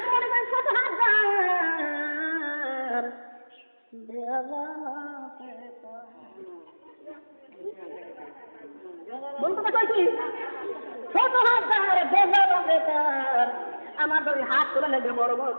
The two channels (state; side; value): inverted; both; correlation -1.00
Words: মনে করি ছোট হাত বলতে কইছি ছোট হাত আমার যদি হাত তুলে নেবে বড় বড়